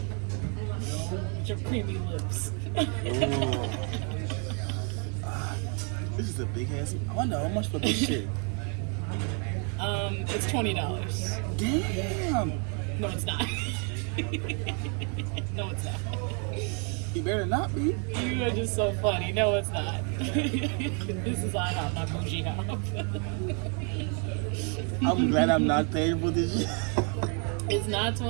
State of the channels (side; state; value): left; quieter; 38.6 dB